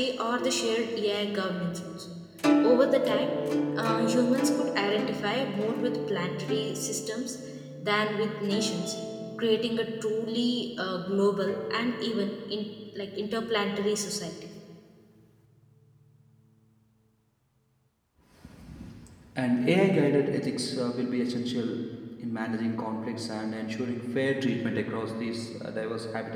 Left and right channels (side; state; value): both; identical; correlation 1.00